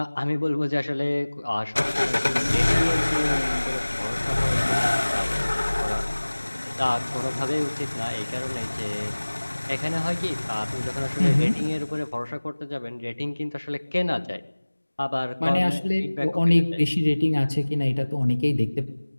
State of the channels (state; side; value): inverted; both; correlation -1.00